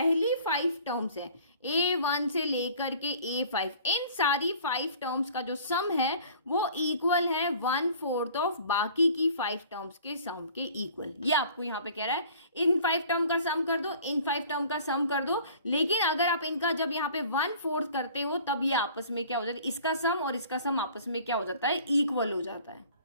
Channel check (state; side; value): inverted; both; correlation -0.49